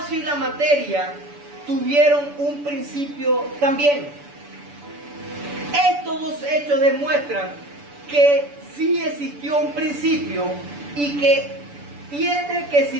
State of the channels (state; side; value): late; left; 6.9 ms